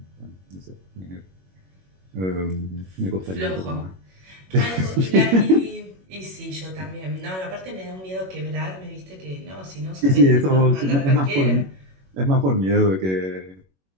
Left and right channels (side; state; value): left; late; 21 ms